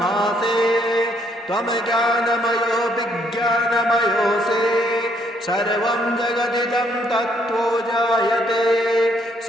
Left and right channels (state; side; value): normal; both; correlation 0.69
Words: त्वं ज्ञानमयो विज्ञानमयोऽसि सर्वं जगदिदं तत्त्वो जायते